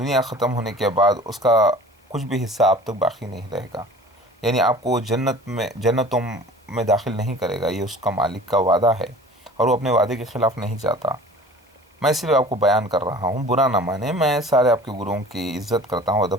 ختم ہونے کے بعد اس کا کچھ بھی حصہ آپ تک باقی نہیں رہے گا، یعنی آپ کو جنتوں میں داخل نہیں کرے گا، یہ اس کا مالک کا وعدہ ہے، اور وہ اپنے وعدے کے خلاف نہیں جاتا۔ میں صرف آپ کو بیان کر رہا ہوں، برا نہ مانے، میں سارے آپ کے گروؤں کی عزت کرتا ہوں،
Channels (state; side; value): normal; both; correlation 0.44